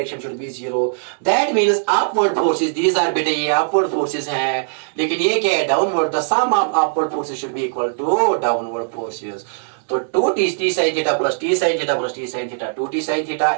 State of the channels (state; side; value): silent; left; 66 dB below the other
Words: should be 0. That means upward forces, these are बेटे ये upward forces हैं, लेकिन ये क्या है, downward. The sum of upward forces should be equal to downward forces. तो 2t sin theta plus t sin theta plus t sin theta 2t sin theta